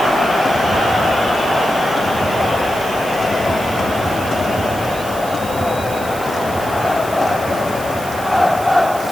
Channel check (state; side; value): noise; right; hiss, 14 dB below the sound